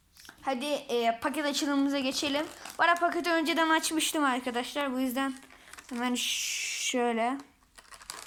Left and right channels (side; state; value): both; identical; correlation 1.00